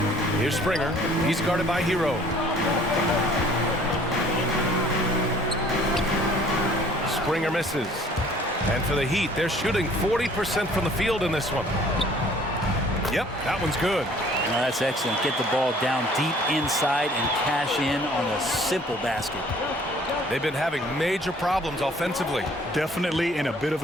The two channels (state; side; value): normal; both; correlation 0.55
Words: Here's Springer. He's guarded by Hero. Springer misses. And for the Heat, they're shooting 40% from the field in this one. Yep, that one's good. No, that's excellent. Get the ball down deep inside and cash in on a simple basket. They've been having major problems offensively. Definitely in a bit of